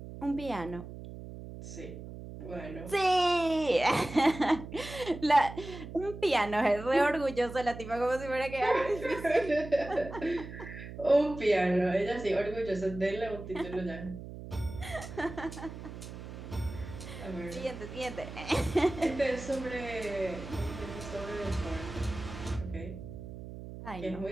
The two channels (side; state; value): right; noise; hum, 11 dB below the sound